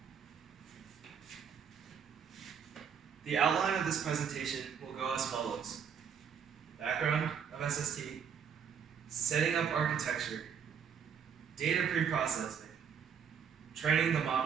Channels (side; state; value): left; quieter; 7.4 dB